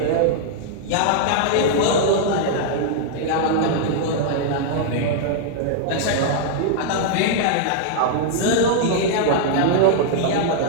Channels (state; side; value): different; both; correlation -0.01